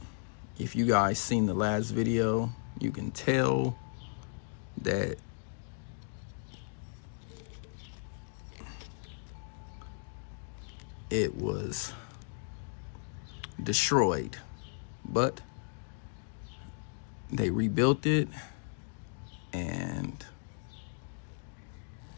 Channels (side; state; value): right; silent; digital silence